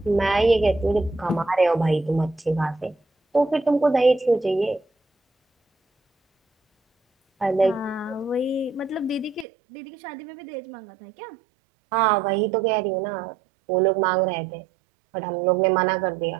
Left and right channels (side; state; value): left; drops out; at 9.5 s